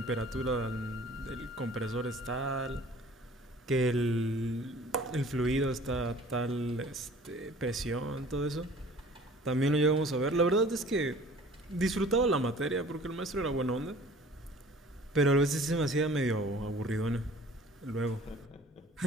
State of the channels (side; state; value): both; normal; correlation 0.49